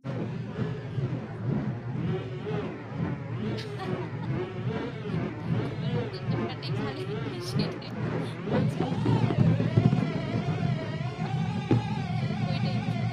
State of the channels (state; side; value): identical; both; correlation 1.00